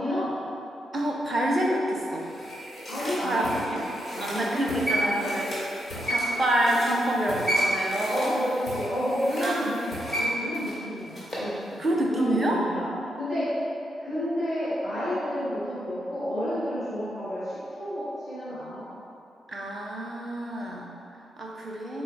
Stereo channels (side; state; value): both; normal; correlation 0.81